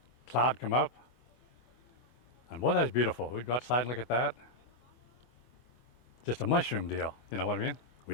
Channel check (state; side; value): late; right; 24 ms